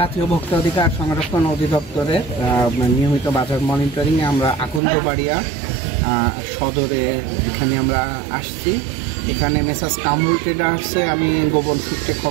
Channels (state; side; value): drops out; left; at 4.8 s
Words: ভোক্তা অধিকার সংরক্ষণ অধিদপ্তরের নিয়মিত বাজার মনিটরিংয়ে আমরা আকন্দবাড়িয়া সদরে এখানে আমরা আসছি। এখানে মেসার্স কামরুল ট্রেডার্সে আমি গোপন সূত্রে